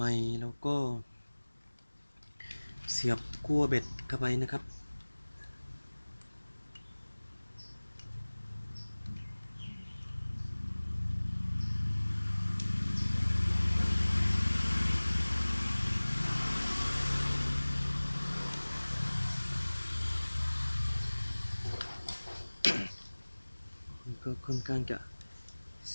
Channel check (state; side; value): inverted; both; correlation -1.00